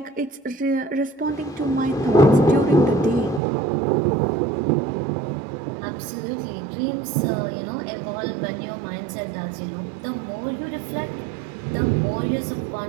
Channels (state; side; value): drops out; left; at 3.4 s